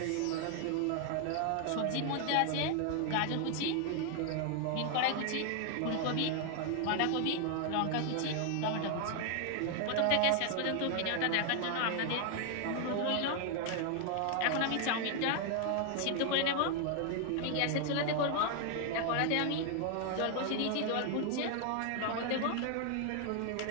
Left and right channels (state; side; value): different; both; correlation 0.00